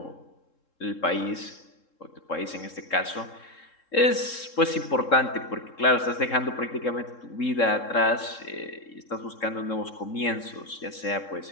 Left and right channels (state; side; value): late; right; 3.7 ms